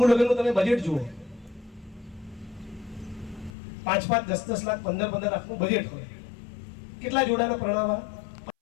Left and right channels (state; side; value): drops out; right; at 3.5 s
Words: લગ્નનું તમે બજેટ જુઓ, 5-5, 10-10 લાખ, 15-15 લાખનું બજેટ હોય. કેટલા જોડાને પરણાવવા?